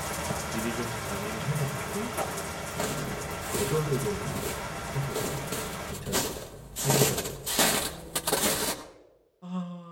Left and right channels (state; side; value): identical; both; correlation 1.00